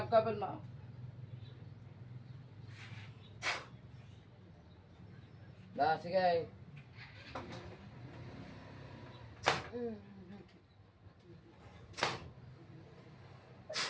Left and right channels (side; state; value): both; identical; correlation 1.00